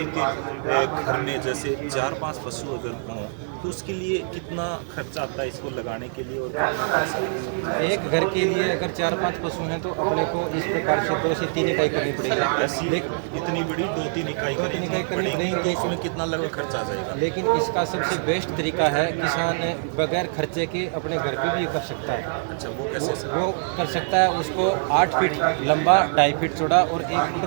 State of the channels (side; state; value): left; silent; digital silence